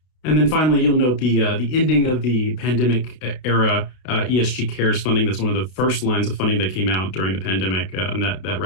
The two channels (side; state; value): right; late; 32 ms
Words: And then finally, you'll note the ending of the pandemic era ESG Cares funding. That's one of the first lines of funding that came out during the pandemic, and that